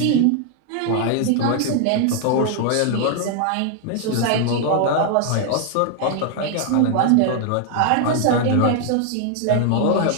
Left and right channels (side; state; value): both; different; correlation 0.00